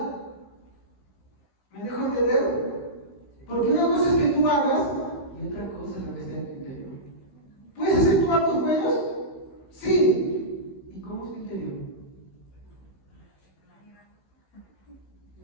¿Me dejo entender? Porque una cosa es que tú hagas y otra cosa es lo que está en tu interior. ¿Puedes hacer tus actos buenos? Sí. ¿Y cómo es tu interior?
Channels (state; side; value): late; right; 16 ms